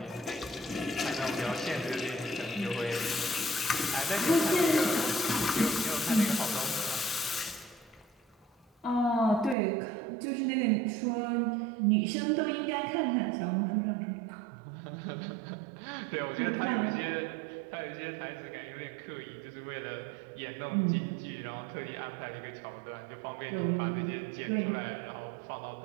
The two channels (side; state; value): left; drops out; at 9.6 s